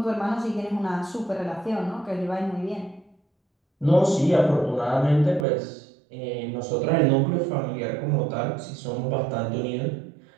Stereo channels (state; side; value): drops out; left; at 5.5 s